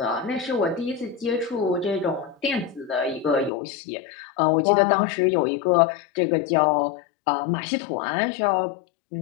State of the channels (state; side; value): drops out; right; at 3.5 s